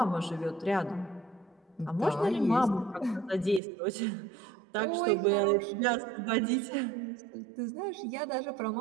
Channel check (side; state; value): left; drops out; at 3.6 s